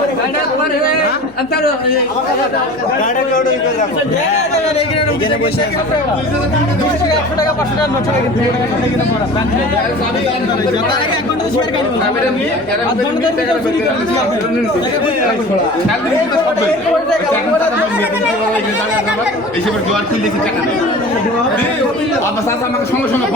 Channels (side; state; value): left; noise; hum, 26 dB below the sound